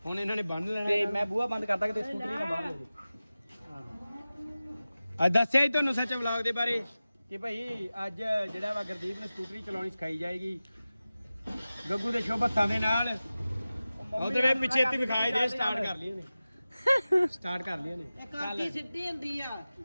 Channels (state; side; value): inverted; both; correlation -0.96